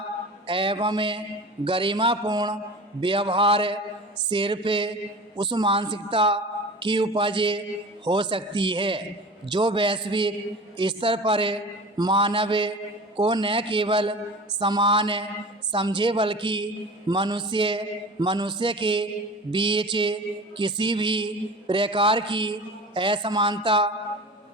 एवं गरिमापूर्ण व्यवहार सिर्फ उस मानसिकता की उपज हो सकती है जो वैश्विक स्तर पर मानव को न केवल समान समझे बल्कि मनुष्य के बीच किसी भी प्रकार की असमानता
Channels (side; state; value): both; normal; correlation 0.36